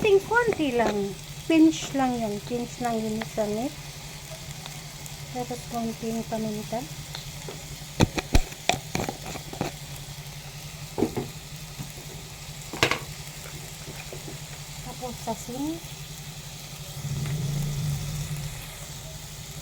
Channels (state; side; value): identical; both; correlation 1.00